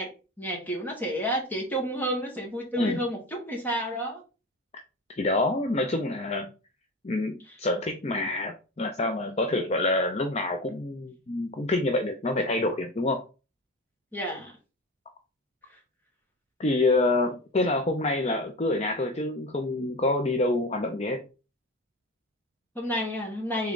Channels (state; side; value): normal; both; correlation 0.28